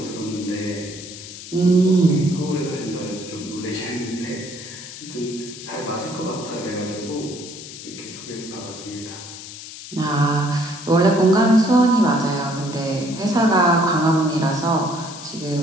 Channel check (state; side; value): noise; left; hiss, 13 dB below the sound